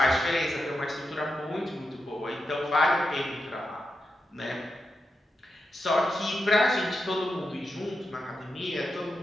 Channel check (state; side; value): normal; both; correlation 0.88